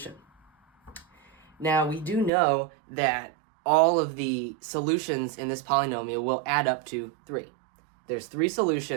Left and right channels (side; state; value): left; drops out; at 2.3 s